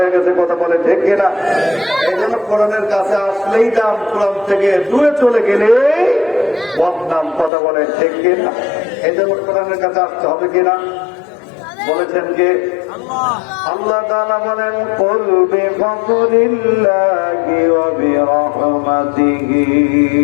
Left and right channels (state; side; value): drops out; right; at 7.5 s